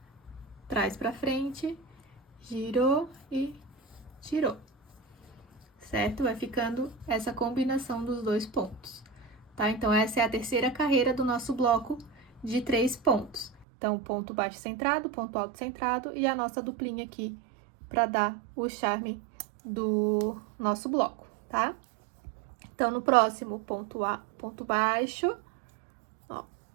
traz pra frente, girou e tirou, certo? Vai ficando essa combinação dos dois pontos, tá? Então, essa é a terceira carreira do nosso bloco de 3 pontos. Então, ponto baixo centrado, ponto alto centrado e a nossa duplinha aqui para dar o charme do nosso bloco, tá? Então, no próximo, ponto baixo, ó.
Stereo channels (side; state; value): left; drops out; at 13.7 s